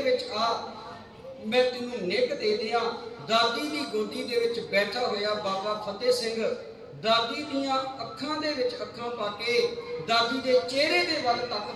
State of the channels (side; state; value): both; identical; correlation 1.00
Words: विच आ, मैं तेनू निग दे दियां। दादी दी गोदी दे विच बैठा होया बाबा फतेह सिंह दादी दियां अखां दे विच अखां पा के दादी दे चेहरे दे वल